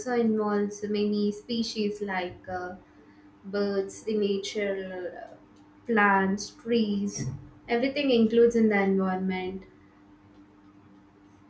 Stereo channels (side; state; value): both; identical; correlation 1.00